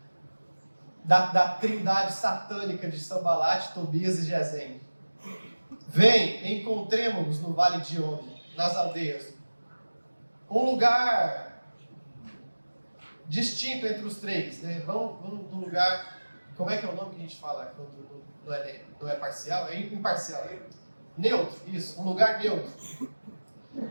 da trindade satânica de Sanbalate, Tobias e Gesem. Vem, encontremos-nos no vale de Ono, nas aldeias. Um lugar distinto entre os três, né? Vamos num lugar, como é que é o nome que a gente fala quando não é parcial? É imparcial, né? Neutro, isso, um lugar neutro.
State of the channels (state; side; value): inverted; both; correlation -1.00